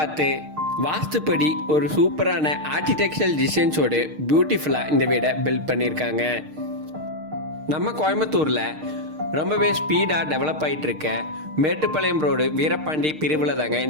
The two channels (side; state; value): left; late; 6.5 ms